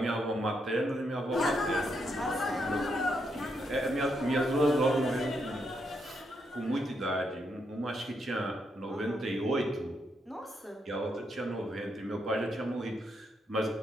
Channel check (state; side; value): normal; both; correlation 0.79